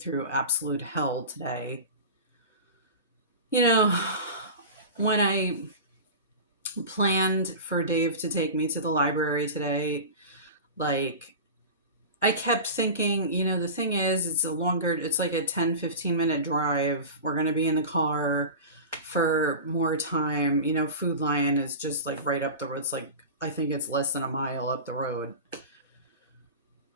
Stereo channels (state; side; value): inverted; both; correlation -0.31